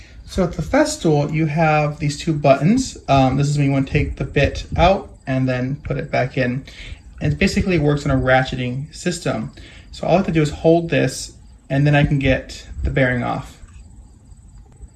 So at the Festool, you have these 2 buttons. This is when you want to take the bit out and then put it back in. And it basically works on a ratcheting system. So all I have to do is hold this and then I can get the bearing off.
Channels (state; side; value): identical; both; correlation 1.00